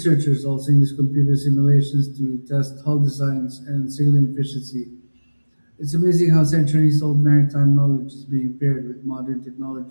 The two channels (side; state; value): both; inverted; correlation -1.00